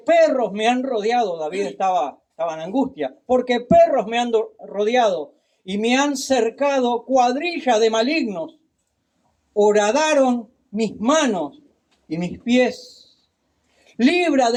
me han rodeado, David estaba en angustia, porque perros me han rodeado y me han cercado cuadrilla de malignos. Horadaron mis manos y mis pies. Libra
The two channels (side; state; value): both; identical; correlation 1.00